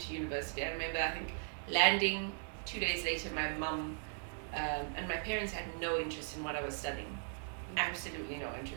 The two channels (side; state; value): left; silent; 52 dB below the other